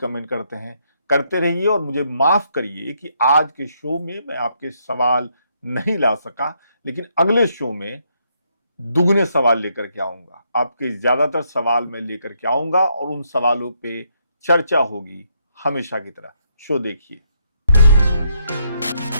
करते हैं। करते रहिए और मुझे माफ करिए कि आज के शो में मैं आपके सवाल नहीं ला सका, लेकिन अगले शो में दुगने सवाल लेकर के आऊंगा। आपके ज्यादातर सवाल मैं लेकर के आऊंगा और उन सवालों पे चर्चा होगी हमेशा की तरह। शो देखिए।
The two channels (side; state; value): both; inverted; correlation -0.74